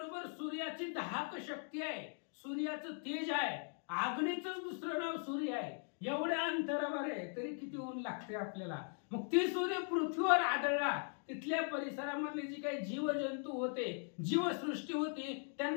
सूर्याची दाहक शक्ती आहे, सूर्याचं तेज आहे, आग्नेचंच दुसरं नाव सूर्य आहे. एवढ्या अंतरावर आहे तरी किती ऊन लागते आपल्याला. मग ते सूर्य पृथ्वीवर आदळला. तिथल्या परिसरामधले जी काही जीवजंतू होते, जीवसृष्टी होती,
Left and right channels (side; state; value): right; silent; 51 dB below the other